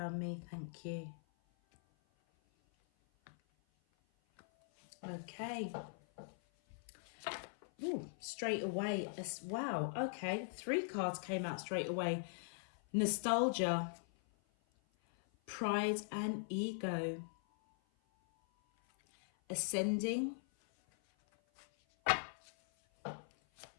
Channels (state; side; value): silent; right; 50 dB below the other